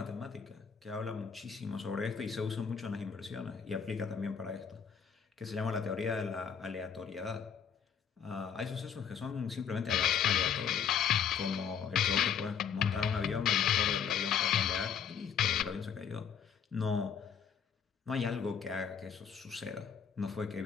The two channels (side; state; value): right; quieter; 7.4 dB